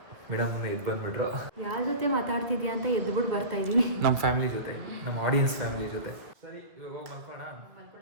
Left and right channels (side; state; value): left; late; 1.6 ms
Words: ಮೇಡಮ್ ಎದ್ದು ಬಂದ್ಬಿಟ್ರು. ಯಾರ ಜೊತೆ ಮಾತಾಡ್ತಿದ್ಯಾ ಅಂತ ಎದ್ಬಿಟ್ಟು ಬರ್ತಾ ಇದೀನಿ. ನಮ್ಮ ಫ್ಯಾಮಿಲಿ ಜೊತೆ, ನಮ್ಮ ಆಡಿಯನ್ಸ್ ಫ್ಯಾಮಿಲಿ ಜೊತೆ. ಸರಿ, ಇವಾಗ ಹೋಗಿ ಮಲ್ಕೋಣ.